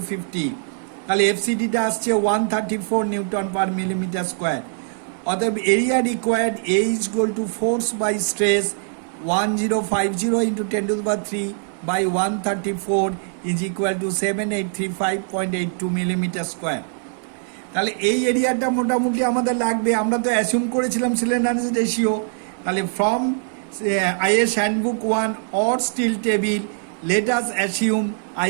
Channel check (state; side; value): silent; left; 64 dB below the other